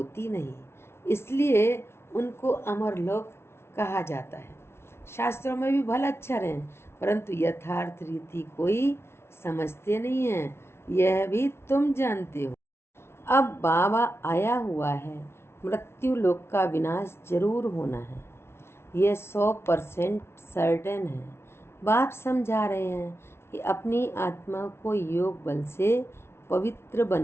नहीं, इसलिए उनको अमर लोक कहा जाता है। शास्त्रों में भी भला अक्षर हैं, परंतु यथार्थ रीति कोई समझते नहीं है, यह भी तुम जानते हो। अब बाबा आया हुआ है, मृत्यु लोक का विनाश जरूर होना है, यह 100% सर्टेन है। बाप समझा रहे हैं कि अपनी आत्मा को योग बल से पवित्र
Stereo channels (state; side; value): late; right; 0.12 ms